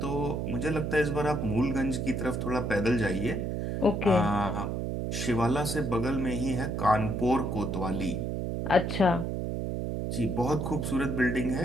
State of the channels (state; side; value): noise; right; hum, 2 dB below the sound